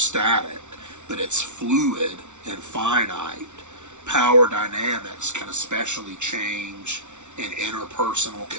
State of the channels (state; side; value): late; left; 0.84 ms